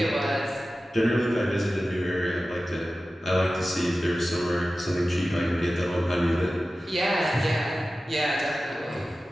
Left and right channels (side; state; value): both; normal; correlation 0.95